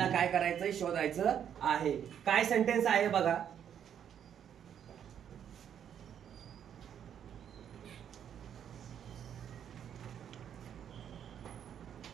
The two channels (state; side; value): quieter; left; 9.0 dB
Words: काय करायचंय शोधायचं आहे. काय सेंटेन्स आहे बघा.